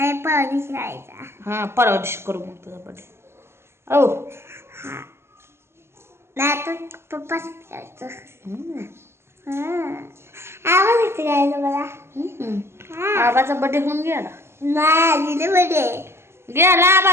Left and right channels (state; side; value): late; left; 0.12 ms